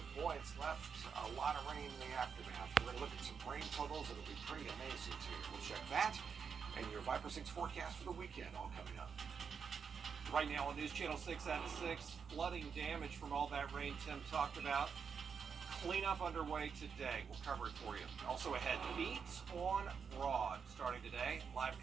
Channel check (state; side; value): quieter; left; 6.3 dB